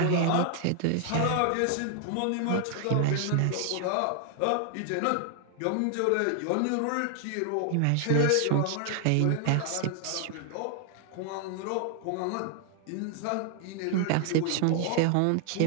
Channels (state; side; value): different; both; correlation 0.00